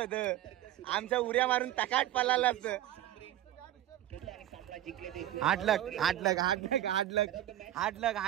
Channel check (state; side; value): quieter; left; 13.2 dB